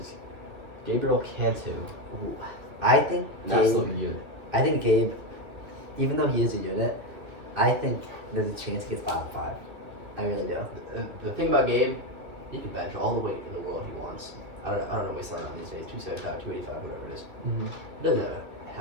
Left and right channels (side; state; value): left; late; 2.9 ms